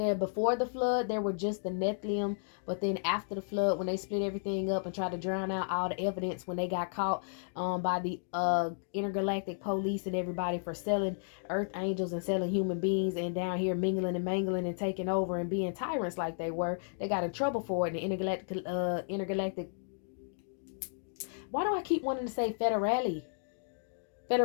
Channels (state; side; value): silent; right; digital silence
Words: before the flood there were just the Nephilim, but then after the flood, when they split everything up and tried to drown out all the evidence, when they got caught by the intergalactic police and everybody for selling earth angels and selling human beings, and down here mingling and mangling and taking over and being tyrants like they were, they got in trouble for it. And the intergalactic, why do I keep wanting to say